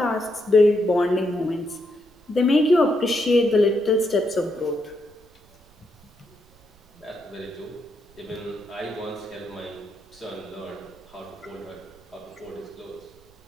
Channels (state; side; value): noise; right; rumble, 29 dB below the sound